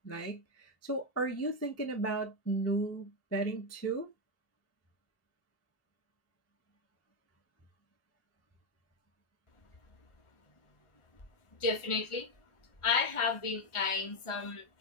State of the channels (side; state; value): right; late; 1.4 ms